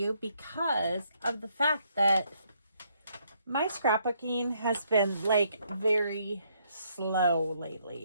because of the fact that my scrapbooking has been like very slow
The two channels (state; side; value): inverted; both; correlation -0.72